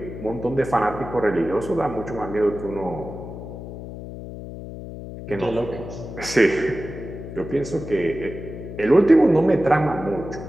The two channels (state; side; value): noise; left; hum, 11 dB below the sound